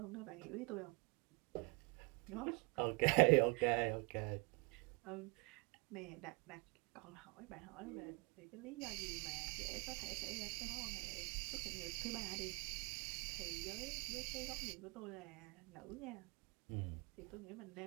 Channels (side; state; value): left; quieter; 29.0 dB